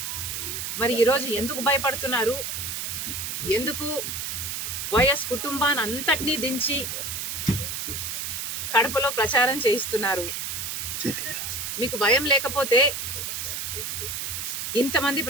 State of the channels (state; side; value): noise; right; hiss, 4 dB below the sound